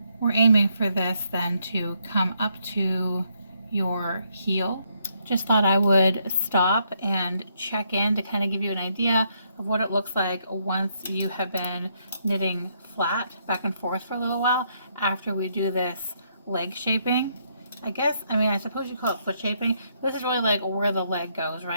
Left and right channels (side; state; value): both; inverted; correlation -0.74